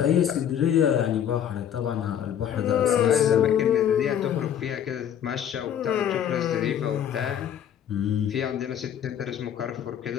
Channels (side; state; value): right; quieter; 9.5 dB